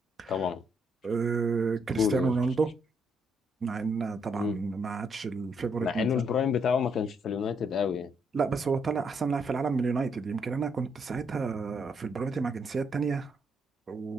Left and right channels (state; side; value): normal; both; correlation 0.74